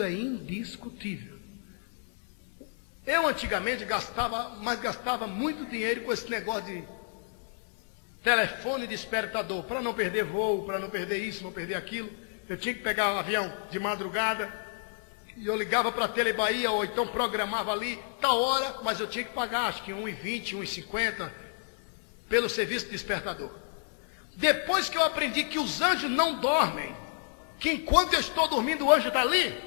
é indiscutível. Eu antigamente gastava muito dinheiro com esse negócio de telefone despertador, para não perder voo, para não perder isso, não perder aquilo. Eu tinha que pegar um avião de madrugada, e eu ligava para a Telebahia, ou então programava ali, tal hora, mas eu tinha que pagar, acho que R$1,20, R$1,50, pelo serviço despertador. Depois que eu aprendi que os anjos não dormem, que enquanto eu estou dormindo o anjo está ali,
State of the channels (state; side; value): silent; right; 58 dB below the other